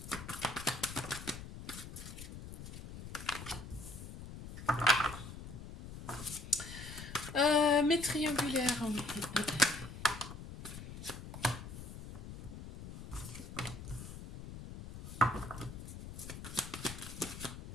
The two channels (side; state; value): left; noise; rumble, 11 dB below the sound